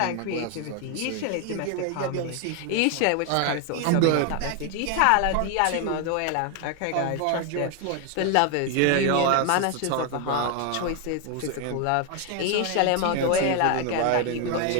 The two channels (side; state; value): both; different; correlation 0.01